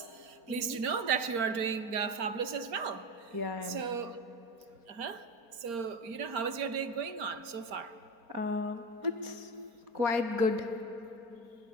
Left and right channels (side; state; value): left; late; 4.3 ms